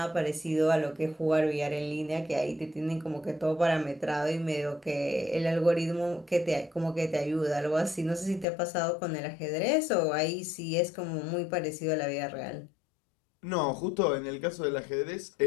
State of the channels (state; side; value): drops out; right; at 8.5 s